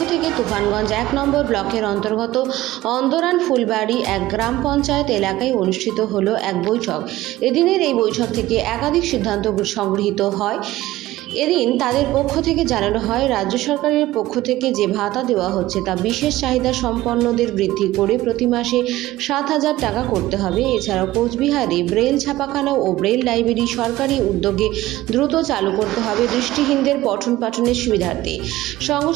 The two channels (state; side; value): quieter; left; 16.4 dB